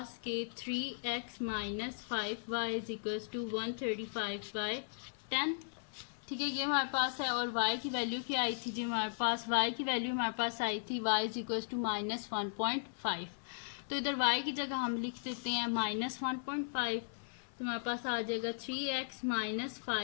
के 3x minus 5y is equals to 135/10, ठीक है, ये हमारे पास है, और y की वैल्यू क्या आई थी जी हमारे पास, y की वैल्यू हमारे पास आई थी y is equals to minus 1.5, तो इधर y की जगह हम लिख देते हैं माइनस 1.5, तो हमारे पास आ जाएगा 3x माइनस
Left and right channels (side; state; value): right; silent; 53 dB below the other